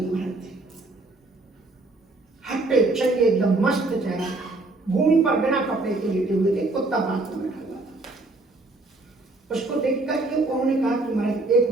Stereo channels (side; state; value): left; quieter; 3.1 dB